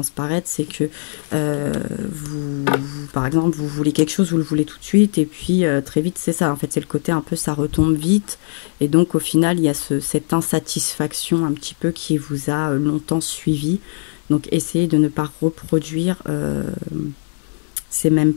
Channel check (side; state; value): right; silent; digital silence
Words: c'est que par exemple, vous voulez quelque chose, vous le voulez tout de suite, et puis très vite, c'est ça. En fait, c'est le côté un peu, ça retombe vite, et donc au final, il y a cette insatisfaction un petit peu qui vous a longtemps suivi. Donc, essayez de ne pas reproduire ces mêmes